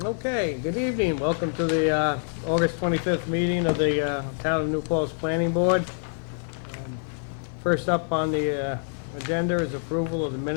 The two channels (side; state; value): right; silent; digital silence